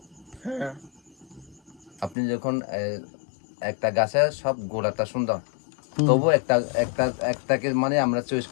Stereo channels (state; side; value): drops out; right; at 2.1 s